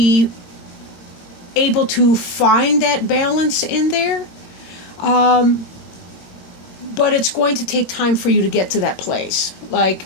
able to find that balance in there. But it's going to take time for you to get to that place. Like,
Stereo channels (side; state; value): right; late; 22 ms